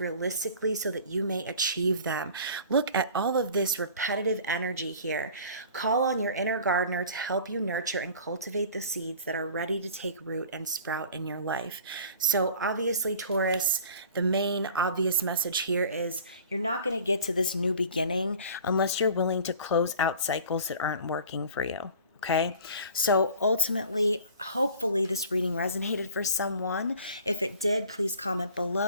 so that you may achieve them. Look at all of this repetitive energy here. Call on your inner gardener to help you nurture and cultivate the seeds that are ready to take root and sprout in your life. So obviously, Taurus, the main obvious message here is you're not going to get to this new beginning unless you're willing to close out cycles that aren't working for you. Okay, so ultimately, hopefully, this reading resonated for someone. If it did, please comment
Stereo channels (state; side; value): inverted; both; correlation -0.45